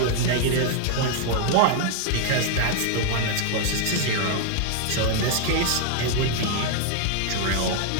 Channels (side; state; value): both; different; correlation 0.00